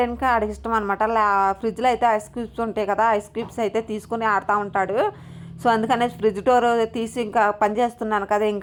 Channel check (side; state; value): both; identical; correlation 1.00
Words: ఇంకా ఆడికి ఇష్టం అనమాట. ఫ్రిడ్జ్లో అయితే ఐస్ క్యూబ్స్ ఉంటాయి కదా, ఐస్ క్యూబ్స్ అయితే తీసుకుని ఆడుతూ ఉంటాడు. సో అందుకనే ఫ్రిడ్జ్ డోర్ తీసి ఇంకా పని చేస్తున్నాను కదా,